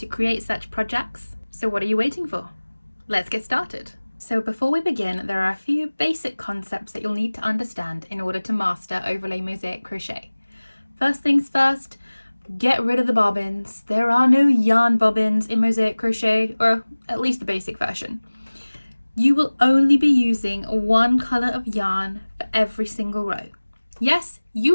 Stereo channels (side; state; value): both; inverted; correlation -1.00